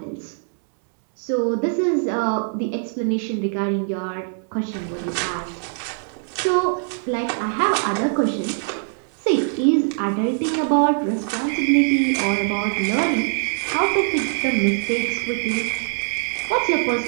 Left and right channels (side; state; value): left; silent; 64 dB below the other